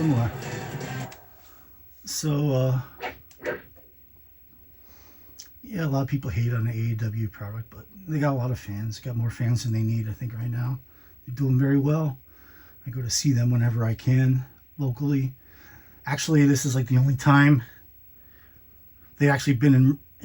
So, yeah, a lot of people hate on the AEW product, but they got a lot of fans. Got more fans than they need, I think, right now. They're doing very well. I go to see them whenever I can, locally. Actually, this is like the only time they've actually been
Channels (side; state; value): both; identical; correlation 1.00